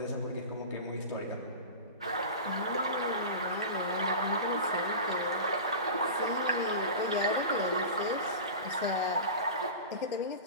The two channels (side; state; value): both; inverted; correlation -0.31